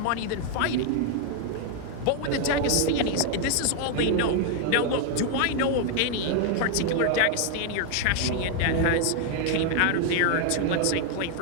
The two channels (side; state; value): both; different; correlation 0.00